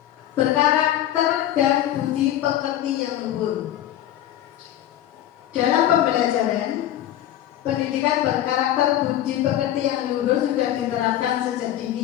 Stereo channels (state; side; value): quieter; right; 12.3 dB